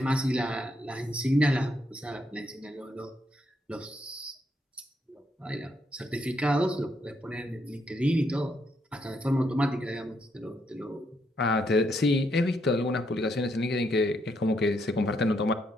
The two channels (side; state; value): both; normal; correlation 0.76